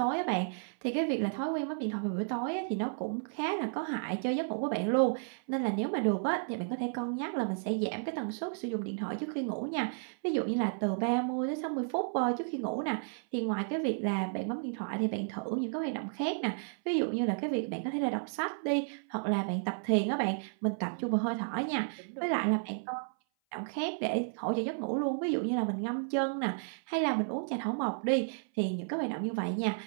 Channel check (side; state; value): left; silent; 56 dB below the other